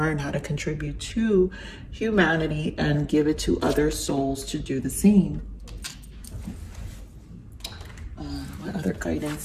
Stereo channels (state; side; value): identical; both; correlation 1.00